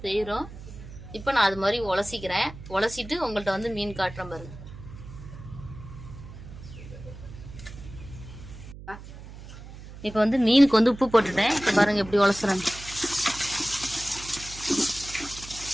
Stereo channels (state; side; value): noise; right; hum, 14 dB below the sound